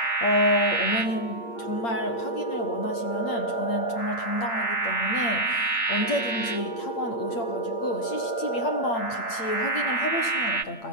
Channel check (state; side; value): late; right; 8.7 ms